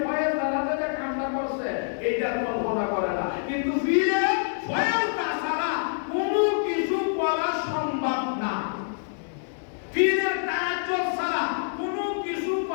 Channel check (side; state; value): right; silent; 61 dB below the other